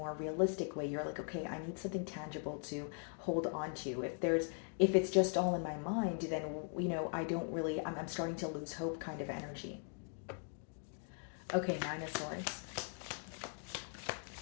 realistic way. You're like, okay, I need something tangible to hold on to. If it's just all in my mind, then I don't really, I'm starting to lose hope kind of energy. Okay, Nine of Swords.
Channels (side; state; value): right; silent; 51 dB below the other